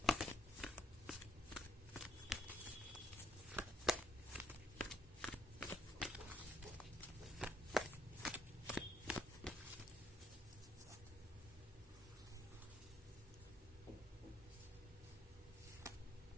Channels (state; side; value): normal; both; correlation 0.69